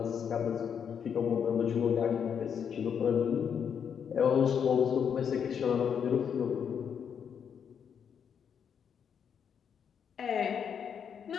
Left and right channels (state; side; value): quieter; right; 7.6 dB